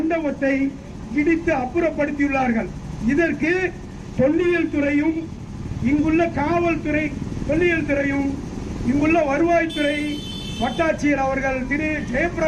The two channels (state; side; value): identical; both; correlation 1.00